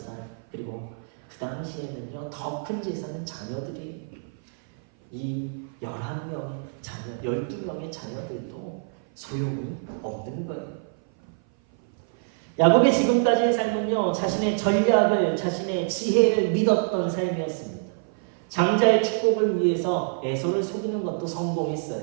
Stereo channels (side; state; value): left; silent; 56 dB below the other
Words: 그리고 그 당시에는요, 더 큰 재산은 자녀들이, 이 11명의 자녀, 12명의 자녀들도 소용이 없는 거예요. 야곱의 지금까지의 삶은요, 자신의 전략을, 자신의 지혜를 믿었던 삶이었습니다. 장자의 축복을 위해서 에서를 속이는 것도